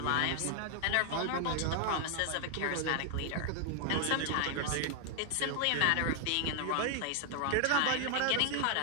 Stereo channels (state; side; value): different; both; correlation 0.00